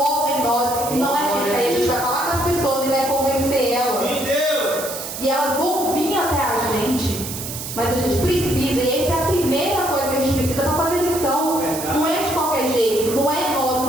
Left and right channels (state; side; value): noise; right; hiss, 8 dB below the sound